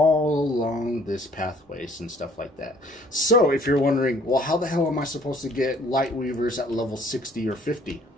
along this pathways and stuff like that. So if you're wondering, well, how the hell am I supposed to get light weavers at level 60 or 50?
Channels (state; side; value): normal; both; correlation 0.58